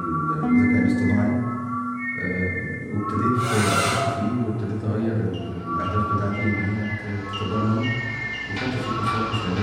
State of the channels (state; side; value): identical; both; correlation 1.00